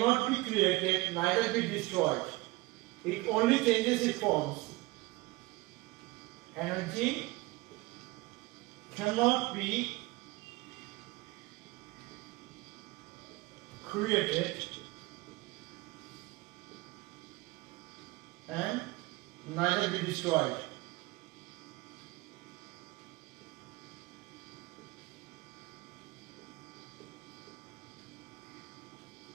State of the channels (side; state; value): left; quieter; 21.5 dB